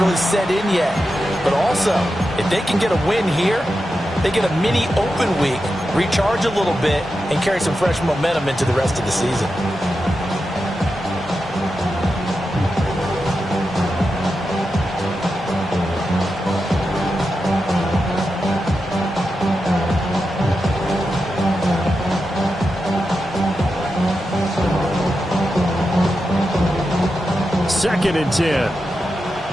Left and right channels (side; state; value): both; normal; correlation 0.89